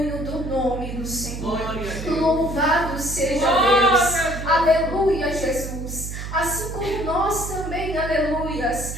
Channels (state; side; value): noise; right; hum, 7 dB below the sound